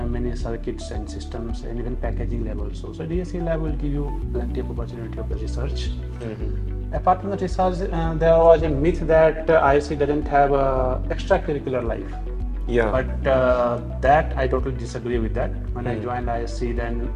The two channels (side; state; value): both; identical; correlation 1.00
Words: many circuits and systems and even packaging lab also. So DSC lab will give you plenty of opportunity of the research. Apart from the research, there was a myth that ISC doesn't have a extracurricular life. Yeah. But that I totally disagree with that. When I joined ISC, then